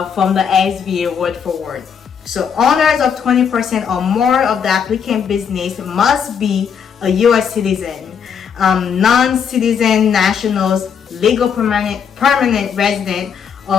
the SBA word for word. So owners of 20% or more of the applicant business must be a US citizen. Non-citizen nationals, legal permanent resident,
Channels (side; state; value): right; quieter; 7.2 dB